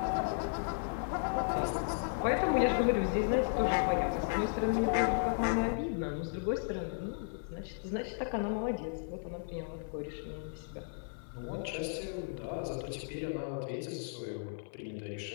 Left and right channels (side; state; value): right; silent; 55 dB below the other